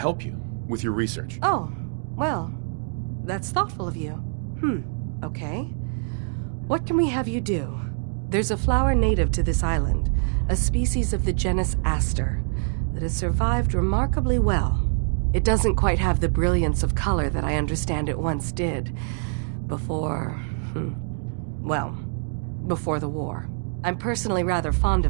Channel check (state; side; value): silent; left; 62 dB below the other